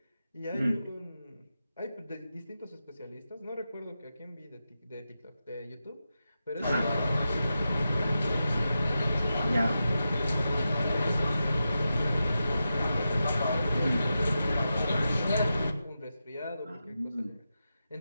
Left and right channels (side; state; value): both; inverted; correlation -0.90